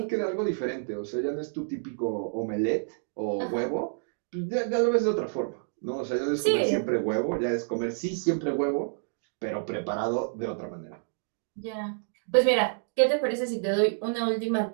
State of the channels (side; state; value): left; silent; digital silence